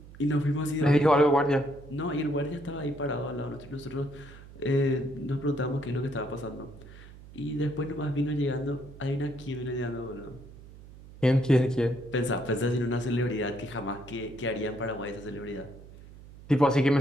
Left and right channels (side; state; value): right; noise; hum, 18 dB below the sound